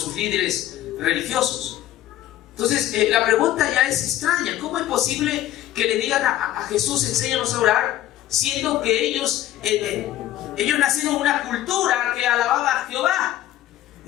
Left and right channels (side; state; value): right; quieter; 13.6 dB